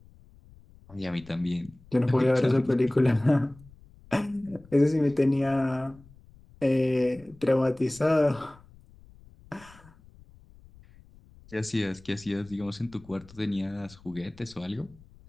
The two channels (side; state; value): left; noise; rumble, 24 dB below the sound